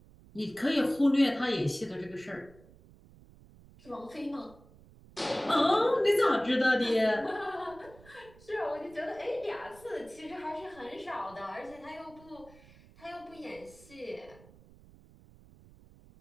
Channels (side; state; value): right; noise; rumble, 24 dB below the sound